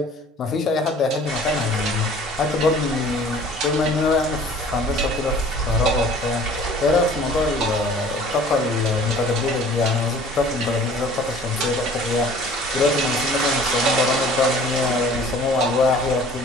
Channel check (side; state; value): both; normal; correlation 0.49